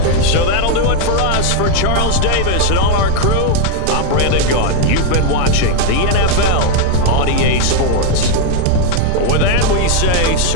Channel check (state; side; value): different; both; correlation 0.00